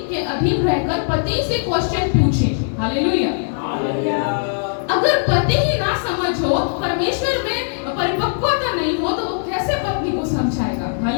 के अधीन रहकर पति से क्वेश्चन पूछे। हालेलुया। अगर पति ही ना समझ हो, परमेश्वर में परिपक्वता नहीं हो, तो वो कैसे पत्नी को समझाएगा?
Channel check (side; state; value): right; silent; digital silence